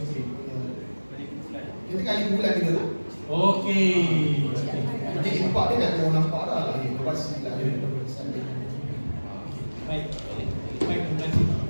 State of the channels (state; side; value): inverted; both; correlation -1.00